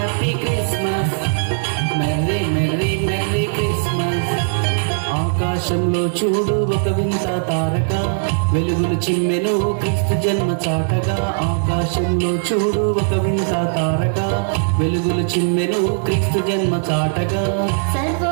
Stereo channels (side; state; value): left; silent; digital silence